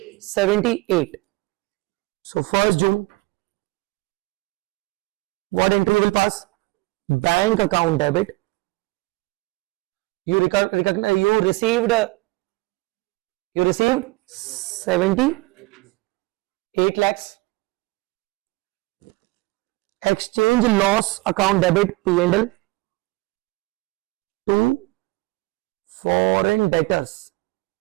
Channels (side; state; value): left; quieter; 22.8 dB